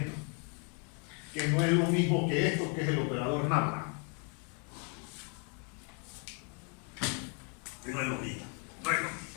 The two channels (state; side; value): quieter; right; 37.8 dB